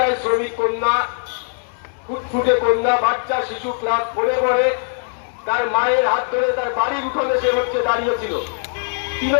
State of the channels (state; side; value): silent; right; 61 dB below the other